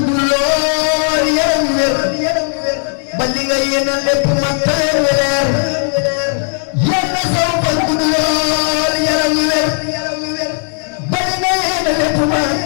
lool yaram wér ba li nga yéene lépp man tawee weer yal na saw fan gudd lool yaram wér ba li nga yéene lépp man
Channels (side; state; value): right; silent; 70 dB below the other